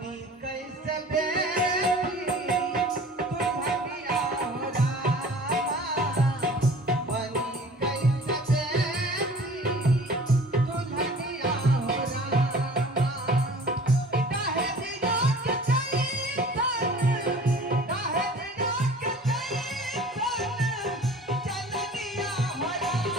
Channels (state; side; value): normal; both; correlation 0.46